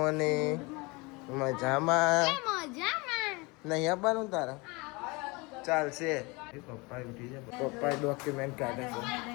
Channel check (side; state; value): right; quieter; 26.3 dB